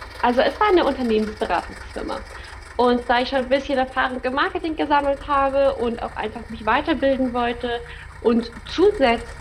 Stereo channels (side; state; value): both; identical; correlation 1.00